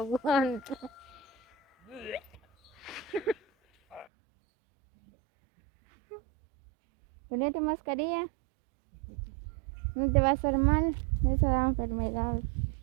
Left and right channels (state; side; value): drops out; left; at 4.0 s